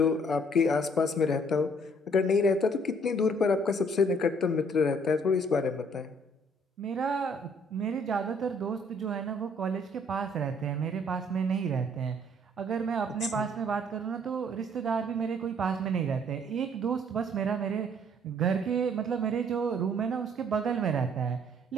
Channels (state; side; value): normal; both; correlation 0.62